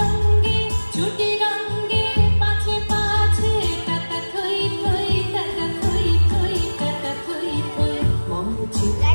ছুটি রঙ্গে পাছে পাছে টাটা থই থই টাটা থই থই টাটা থই থই মমচি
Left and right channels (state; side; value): inverted; both; correlation -1.00